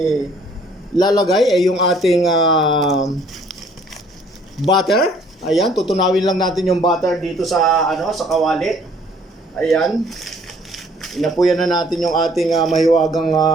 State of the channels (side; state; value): both; normal; correlation 0.60